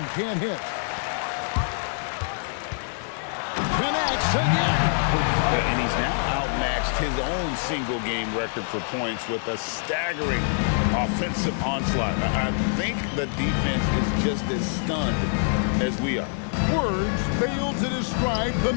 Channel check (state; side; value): silent; right; digital silence